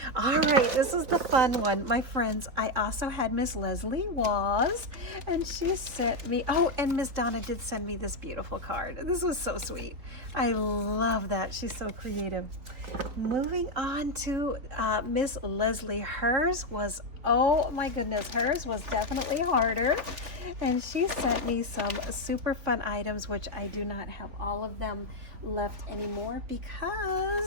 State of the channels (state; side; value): late; left; 3.8 ms